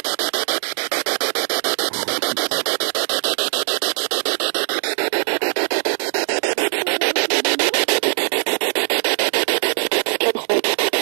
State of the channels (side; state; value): left; silent; digital silence